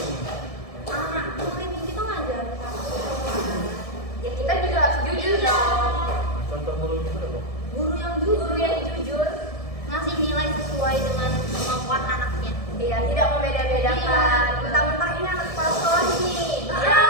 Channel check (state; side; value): late; right; 1.7 ms